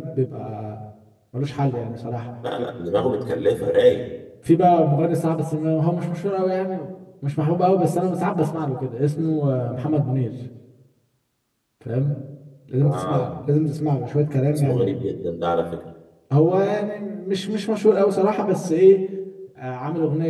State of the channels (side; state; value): both; identical; correlation 1.00